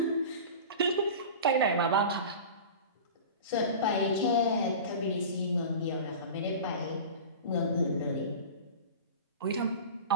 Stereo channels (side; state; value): both; inverted; correlation -0.34